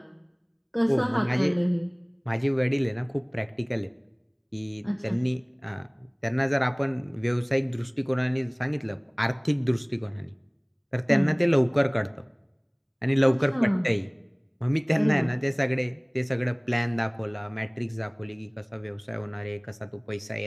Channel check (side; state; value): both; identical; correlation 1.00